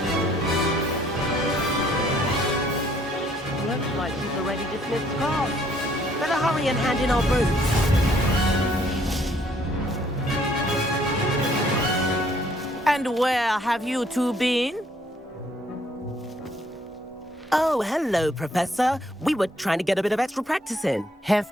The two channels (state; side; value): normal; both; correlation 0.64